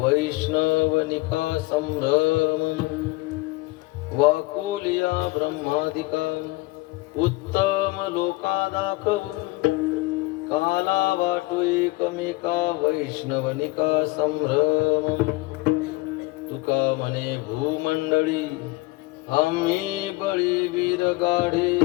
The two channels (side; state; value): right; quieter; 21.9 dB